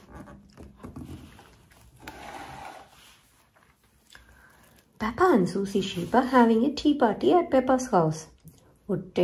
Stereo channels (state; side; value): identical; both; correlation 1.00